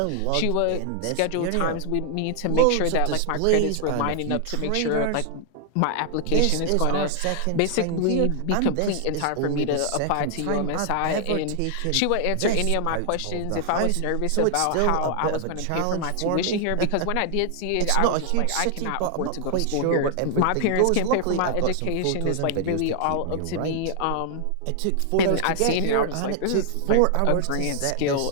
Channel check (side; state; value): both; different; correlation 0.00